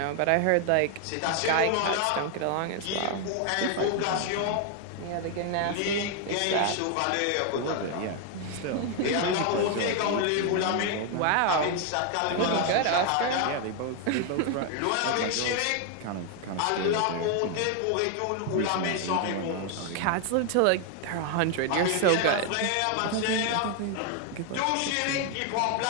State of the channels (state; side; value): different; both; correlation 0.01